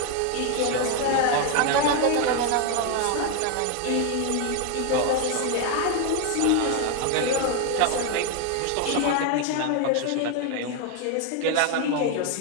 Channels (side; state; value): both; different; correlation 0.01